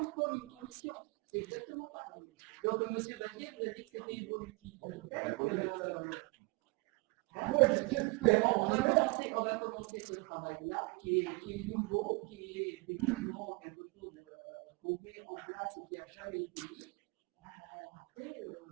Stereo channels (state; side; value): quieter; left; 28.3 dB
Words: comme une commission. C'est exactement pareil. Donc, monsieur Bazier vous a dit que c'était évolutif. Peut-être que, Moi, j'espère. on va commencer ce travail-là, qui est nouveau, qui est effectivement quelque chose qu'on met en place et qui n'a jamais été mis. Après,